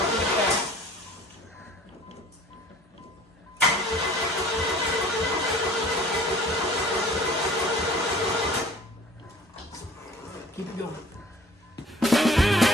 Keep it going.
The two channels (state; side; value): normal; both; correlation 0.49